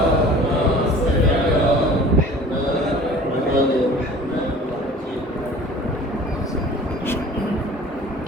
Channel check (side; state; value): both; normal; correlation 0.45